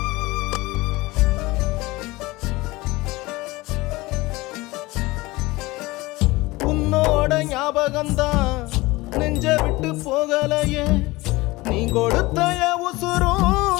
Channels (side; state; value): right; quieter; 21.0 dB